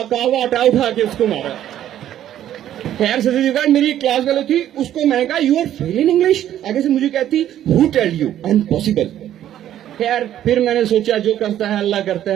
वाटा उठा के उसको मारा। खैर सदर मेरी एक क्लास वाली थी, उसको मैंने कहा you are fail in English, आगे से मुझे कहती हु टेल यू, अनपॉसिबल। खैर फिर मैंने सोचा जो करता है अल्लाह करता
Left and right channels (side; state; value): left; quieter; 11.6 dB